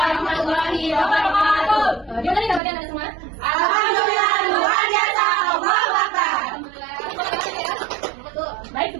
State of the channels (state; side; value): drops out; left; at 2.6 s